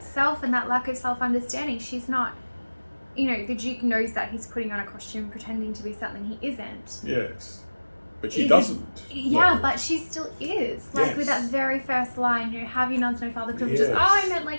self and that lack of self-understanding. She's not, the Duke knows that he's putting on a costume pretending to be something he isn't. Yes. But she doesn't. Yeah, No. but she still is. Like with that very first line, have you nuns no father privileges? Yes. Oh, I meant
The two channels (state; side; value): inverted; both; correlation -1.00